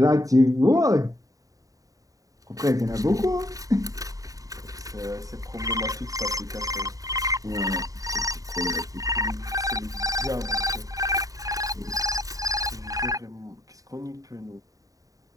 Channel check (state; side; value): late; left; 0.17 ms